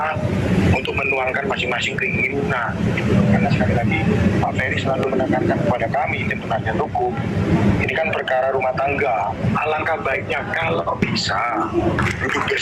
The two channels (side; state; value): both; identical; correlation 1.00